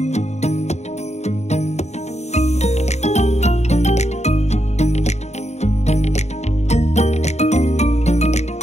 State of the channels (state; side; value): late; right; 0.32 ms